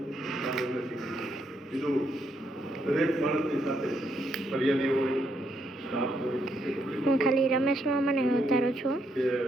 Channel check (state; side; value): normal; both; correlation 0.76